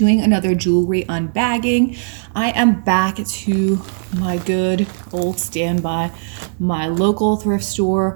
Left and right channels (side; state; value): left; silent; digital silence